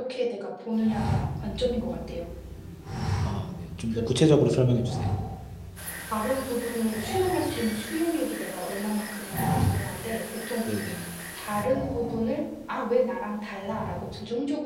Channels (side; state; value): both; identical; correlation 1.00